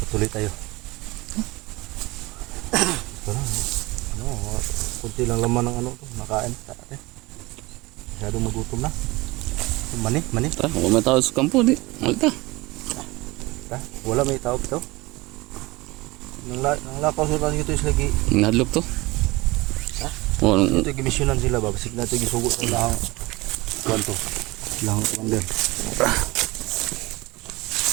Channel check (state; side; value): quieter; left; 21.8 dB